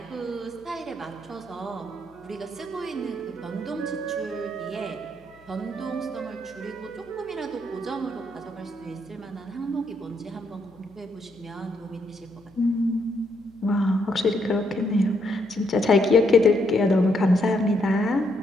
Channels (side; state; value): left; noise; hum, 28 dB below the sound